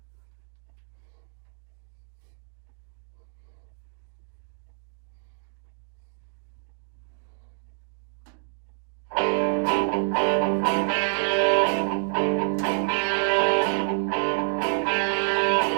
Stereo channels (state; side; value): silent; left; digital silence